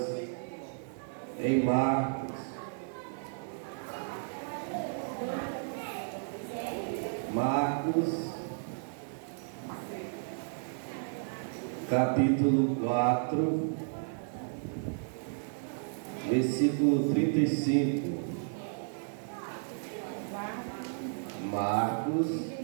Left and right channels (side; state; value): left; silent; digital silence